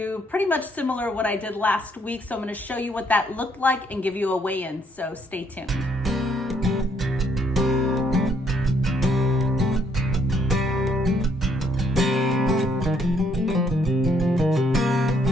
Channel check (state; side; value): normal; both; correlation 0.69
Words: pretty much similar what I did last week. So I'm going to show you what that looked like and give you a weigh-in. So stay tuned.